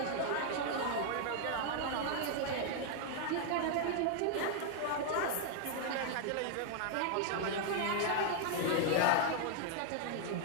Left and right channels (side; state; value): both; different; correlation 0.00